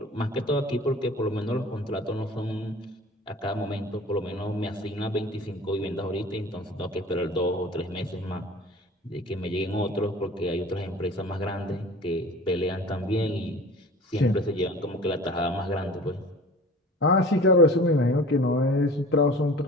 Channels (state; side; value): normal; both; correlation 0.42